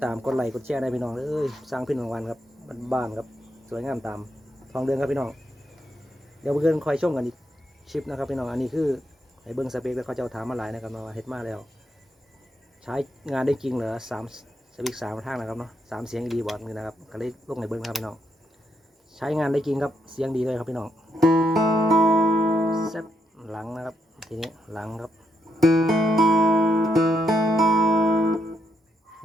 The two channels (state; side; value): normal; both; correlation 0.79